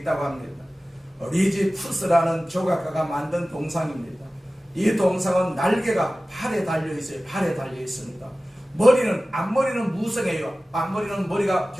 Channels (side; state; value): both; normal; correlation 0.96